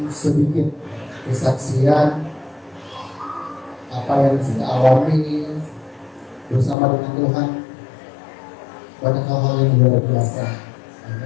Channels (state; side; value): drops out; right; at 6.8 s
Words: sedikit kesaksian apa yang saya alami bersama dengan Tuhan. Banyak hal-hal yang luar biasa.